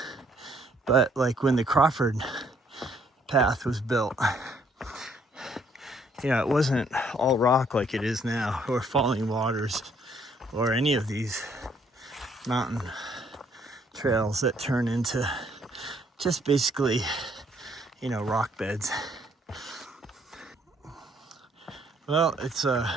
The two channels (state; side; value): normal; both; correlation 0.66